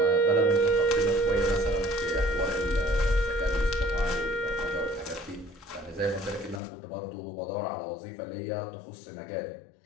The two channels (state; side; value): drops out; right; at 6.6 s